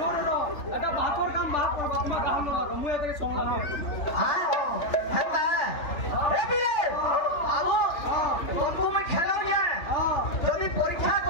এটা বাকর কাম বাক করবা তোমার কাম ন লাগো মুই এটাকে সমলা হ্যাঁ হেতা এ বিরে বাবু তুমি খেলাও যে যদি পরীক্ষা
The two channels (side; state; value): right; late; 3.4 ms